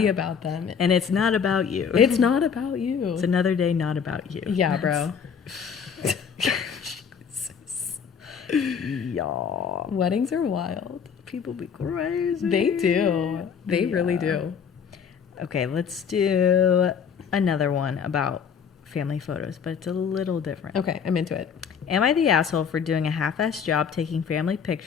about them. And it's not about you. It's not about you. It's another day not about you. Yeah, bro. Y'all. Weddings are wild. People be crazy. They do. They really do. Okay, let's do another one about family photos, but it's a little different. Okay, I'm into it. Am I the asshole for doing a half-assed job taking family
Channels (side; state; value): right; quieter; 6.9 dB